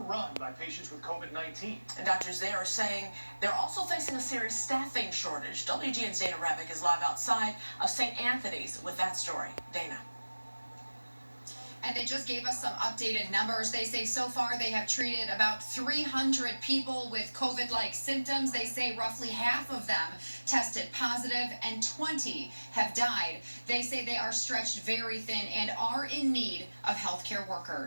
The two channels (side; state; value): both; inverted; correlation -1.00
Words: by patients with COVID-19. And doctors there are saying they're also facing a serious staffing shortage. WGN's Dana Rebick is live outside of St. Anthony's with that story. Dana. And they just gave us some updated numbers. They say so far they have treated about 300 people with COVID-like symptoms. They say roughly half of them tested positive and 20 have died. They say they are stretched very thin and are in need of healthcare